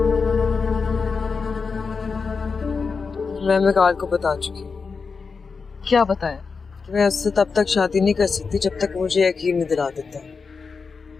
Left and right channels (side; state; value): right; quieter; 5.0 dB